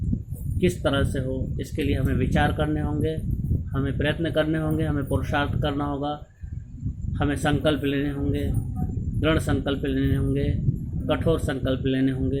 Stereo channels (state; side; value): identical; both; correlation 1.00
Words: किस तरह से हो इसके लिए हमें विचार करने होंगे, हमें प्रयत्न करने होंगे, हमें पुरुषार्थ करना होगा, हमें संकल्प लेने होंगे, दृढ़ संकल्प लेने होंगे, कठोर संकल्प लेने